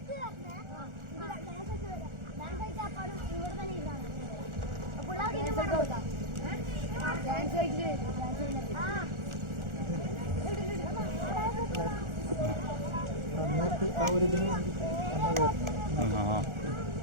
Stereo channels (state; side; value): late; left; 1.4 ms